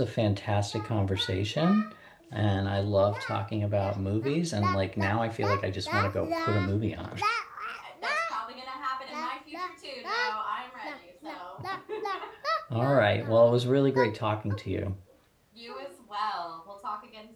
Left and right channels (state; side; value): identical; both; correlation 1.00